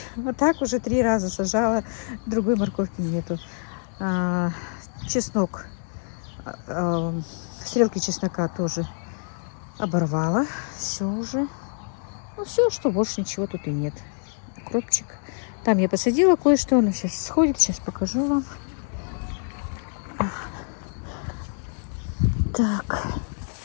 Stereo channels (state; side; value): silent; right; 61 dB below the other